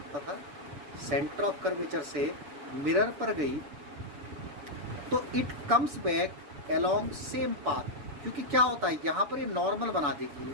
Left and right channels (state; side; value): late; left; 6.9 ms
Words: था, सेंटर ऑफ कर्वेचर से मिरर पर गई तो it comes back along same path, क्योंकि क्या होता है यहाँ पर ये नॉर्मल बना देगी,